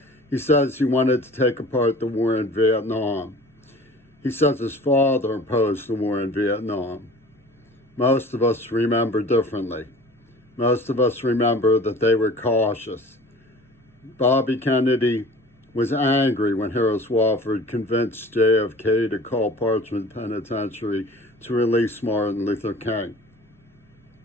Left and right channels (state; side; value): normal; both; correlation 0.44